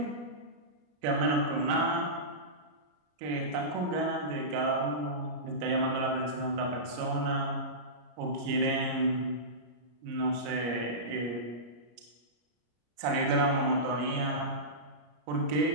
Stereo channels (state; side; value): late; left; 34 ms